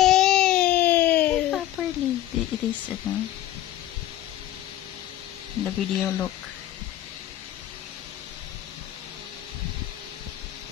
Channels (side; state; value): right; quieter; 13.4 dB